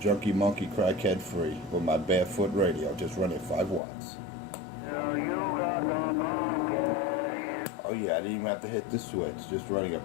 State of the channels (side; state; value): right; drops out; at 3.8 s